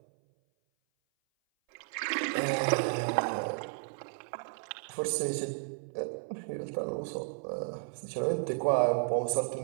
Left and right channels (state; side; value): silent; left; 56 dB below the other